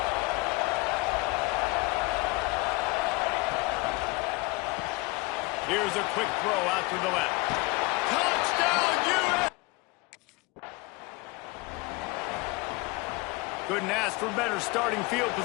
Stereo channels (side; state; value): right; quieter; 24.3 dB